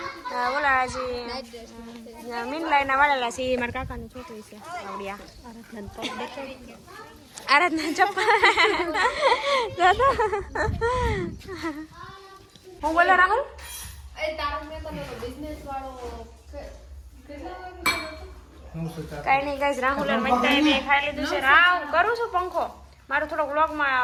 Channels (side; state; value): both; identical; correlation 1.00